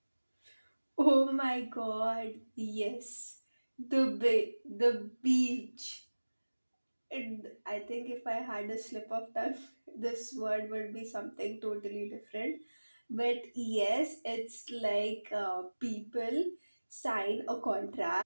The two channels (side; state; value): both; inverted; correlation -1.00